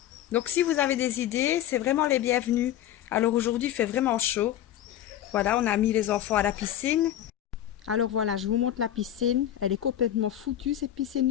Donc si vous avez des idées, c'est vraiment les bienvenus. Alors aujourd'hui il fait vraiment chaud. Voilà, on a mis les enfants à la piscine. Alors voilà, je vous montre la piscine. Elle est complètement foutue cette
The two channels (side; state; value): right; quieter; 11.7 dB